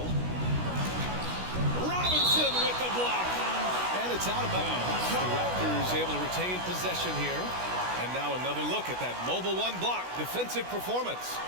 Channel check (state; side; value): late; left; 16 ms